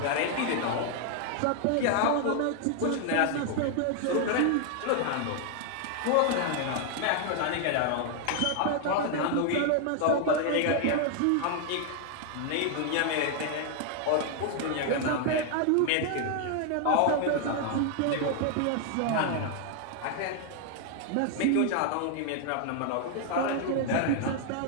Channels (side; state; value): both; different; correlation 0.00